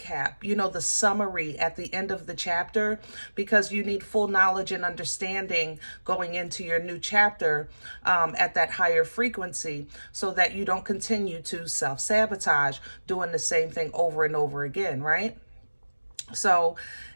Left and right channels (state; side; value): inverted; both; correlation -1.00